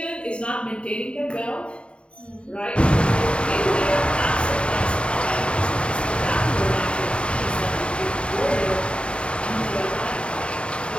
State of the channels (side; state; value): right; late; 0.056 ms